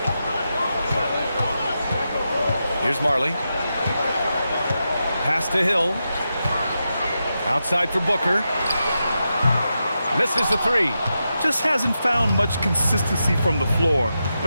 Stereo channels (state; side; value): inverted; both; correlation -0.88